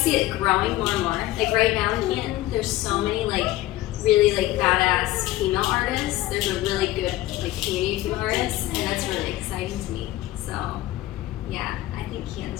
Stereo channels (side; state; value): right; quieter; 16.1 dB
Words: see it growing more and more. Like right now in Canton, there's so many like really like badass female artists. There's a really good like community of female artists, and that's really exciting to me. So yeah, I think